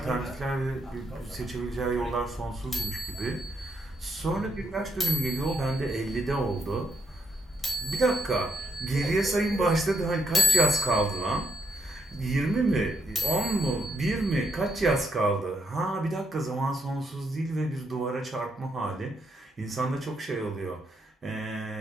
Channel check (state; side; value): normal; both; correlation 0.75